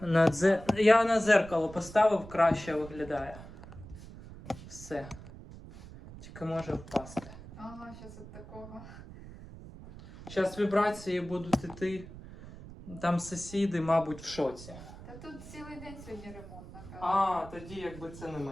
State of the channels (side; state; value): right; noise; rumble, 15 dB below the sound